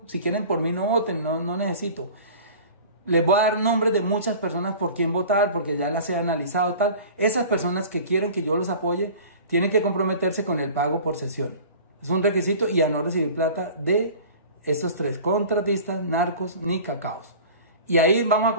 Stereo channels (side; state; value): both; inverted; correlation -0.41